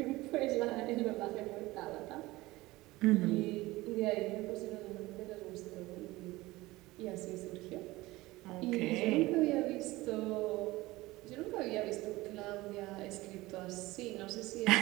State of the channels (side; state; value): left; quieter; 19.5 dB